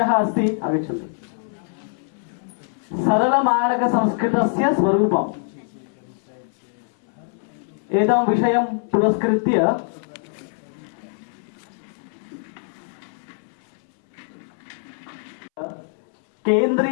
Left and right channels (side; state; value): right; silent; 63 dB below the other